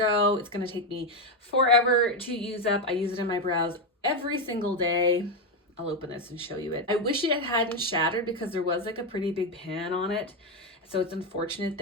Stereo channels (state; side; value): normal; both; correlation 0.09